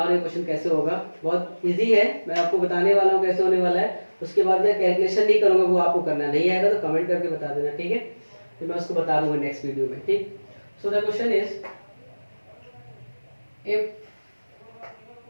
रहा हूँ क्वेश्चन कैसे होगा, बहुत इजी है, मैं आपको बताने वाला हूँ कैसे होने वाला है। उसके बाद मैं कैलकुलेशन नहीं करूँगा, वो आपको करना नहीं आएगा तो कमेंट करके बता देना, ठीक है। तो मैं उसको बता दूंगा नेक्स्ट वीडियो में, ठीक। So the question is if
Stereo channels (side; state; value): both; inverted; correlation -1.00